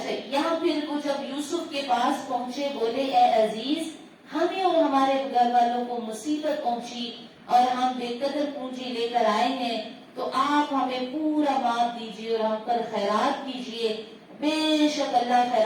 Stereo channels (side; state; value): both; identical; correlation 1.00